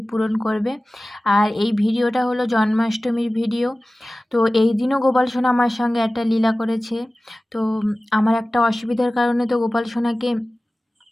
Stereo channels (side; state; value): both; normal; correlation 0.97